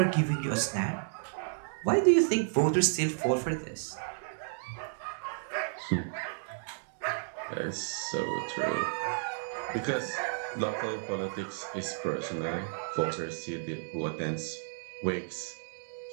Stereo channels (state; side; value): silent; left; digital silence